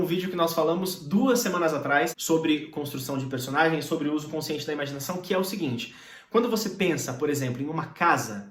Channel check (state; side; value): identical; both; correlation 1.00